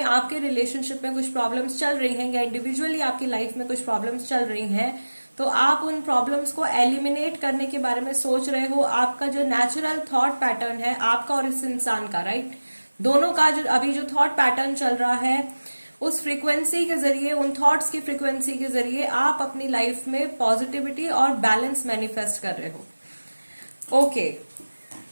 आपके रिलेशनशिप में कुछ प्रॉब्लम्स चल रही हैं या इंडिविजुअली आपकी लाइफ में कुछ प्रॉब्लम्स चल रही हैं, तो आप उन प्रॉब्लम्स को एलिमिनेट करने के बारे में सोच रहे हो। आपका जो नेचुरल थॉट पैटर्न है आपका और इस इंसान का, राइट, दोनों का जो अभी जो थॉट पैटर्न चल रहा है उस फ्रीक्वेंसी के जरिए, उन थॉट्स की फ्रीक्वेंसी के जरिए आप अपनी लाइफ में पॉजिटिविटी और बैलेंस मैनिफेस्ट कर रहे हो। ओके,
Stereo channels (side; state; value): both; inverted; correlation -1.00